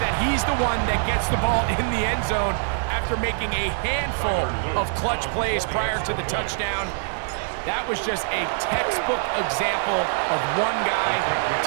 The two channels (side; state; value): left; silent; 62 dB below the other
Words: he's the one that gets the ball in the end zone after making a handful of clutch plays prior to the touchdown. That was just a textbook example of one guy